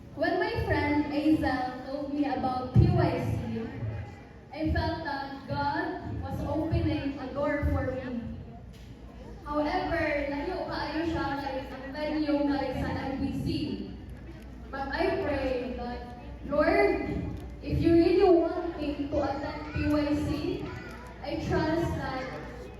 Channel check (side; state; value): both; identical; correlation 1.00